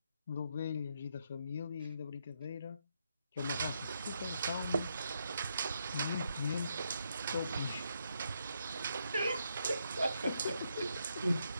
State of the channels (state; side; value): inverted; both; correlation -0.78